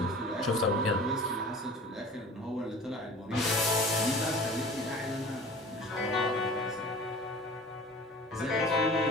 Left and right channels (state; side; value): normal; both; correlation 0.42